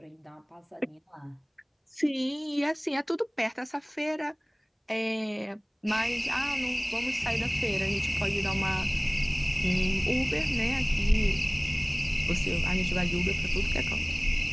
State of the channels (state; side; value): identical; both; correlation 1.00